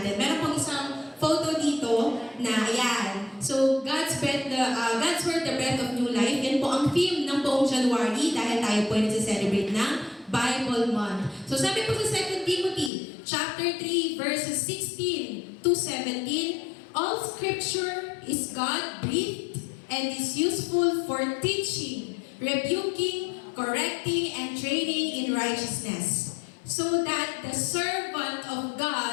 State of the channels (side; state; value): right; drops out; at 12.9 s